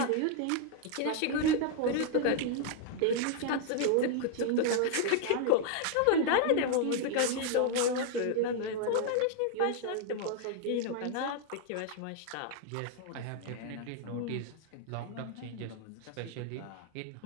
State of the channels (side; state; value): both; different; correlation 0.00